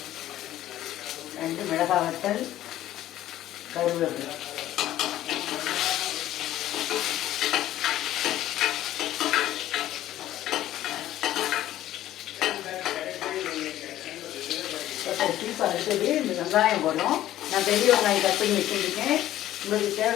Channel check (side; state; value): right; quieter; 13.5 dB